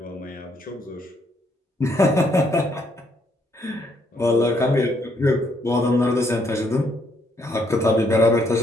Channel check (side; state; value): both; normal; correlation 0.71